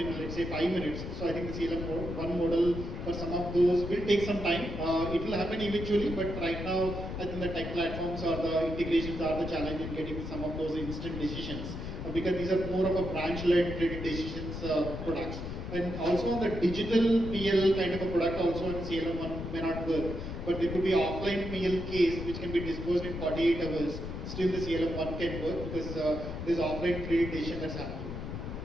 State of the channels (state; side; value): noise; left; rumble, 7 dB below the sound